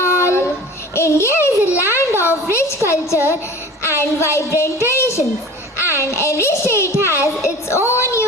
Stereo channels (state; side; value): normal; both; correlation 0.40